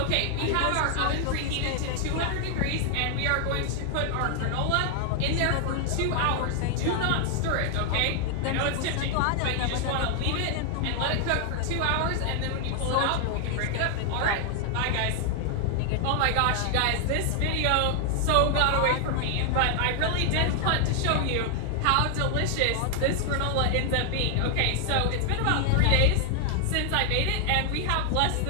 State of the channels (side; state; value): both; different; correlation 0.00